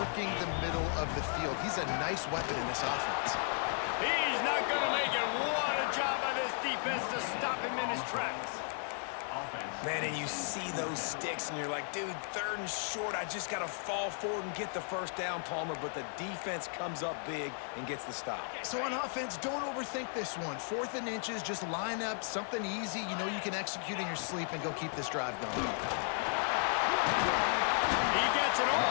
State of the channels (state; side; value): silent; right; 54 dB below the other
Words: the middle of the field. He's a nice weapon in this offense. He's not going to make it. What a job by this defense to stop him in his tracks. Man, and you see those sticks, and you're like, dude, 3rd and short. I just got to fall forward and get the 1st down, Palmer. But the defense comes up big and gets the stop. So on offense, don't overthink this one. 4th and inches, just line up something easy you know you can execute in your sleep and go keep this drive going. He gets it